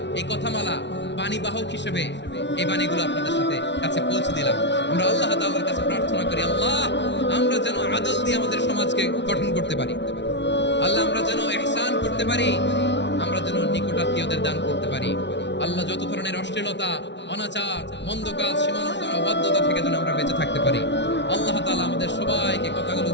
এই কথামালা, বাণী বাহক হিসেবে এই বাণীগুলো আপনাদের সাথে কাছে পৌঁছে দিলাম। আমরা আল্লাহ তাআলার কাছে প্রার্থনা করি, আল্লাহ আমরা যেন আদল দিয়ে আমাদের সমাজকে গঠন করতে পারি। আল্লাহ আমরা যেন ইহসান করতে পারি, আমরা যেন নিকটাত্মীয়দের দান করতে পারি। আল্লাহ যত ধরনের অশ্লীলতা, অনাচার, মন্দ কাজ, সীমালঙ্ঘন, অবাধ্যতা থেকে যেন আমরা বেঁচে থাকতে পারি। আল্লাহ তাআলা আমাদের সবাইকে কথাগুলো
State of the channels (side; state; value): right; late; 0.51 ms